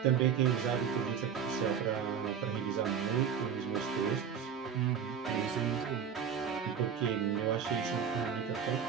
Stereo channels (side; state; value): left; quieter; 7.6 dB